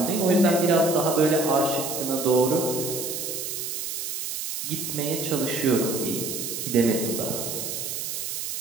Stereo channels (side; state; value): right; noise; hiss, 4 dB below the sound